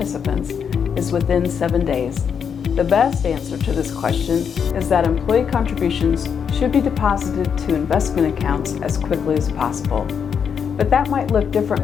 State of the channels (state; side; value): quieter; right; 7.1 dB